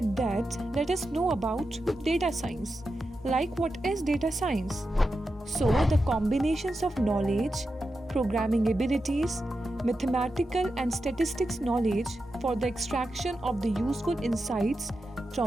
that, let us know about data science. Like what is data science? So, the combinations of knowledge, programming abilities, mathematical and statistics knowledge for the extraction of the useful insights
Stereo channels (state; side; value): normal; both; correlation 0.89